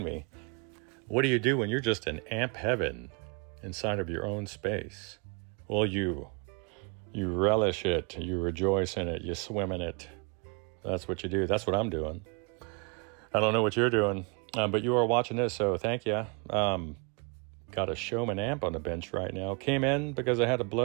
me. What do you do when you're just in amp heaven inside of your own space? Well, you relish it, you rejoice in it, you swim in it. That's what you do. That's what I'm doing. I don't know what you're doing, but you are watching this, so thank you. Got a Showman amp on the bench right now. Came in because I had a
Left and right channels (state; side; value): quieter; left; 33.7 dB